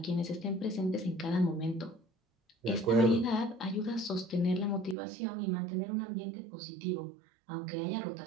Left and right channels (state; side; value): drops out; left; at 5.0 s